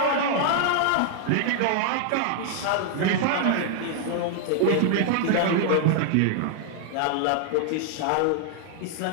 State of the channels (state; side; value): different; both; correlation 0.00